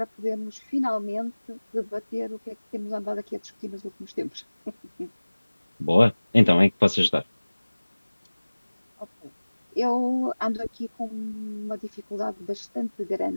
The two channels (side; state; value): both; inverted; correlation -1.00